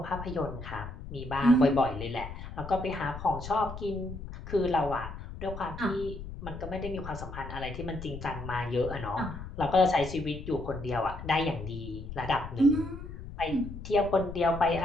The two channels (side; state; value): left; noise; rumble, 10 dB below the sound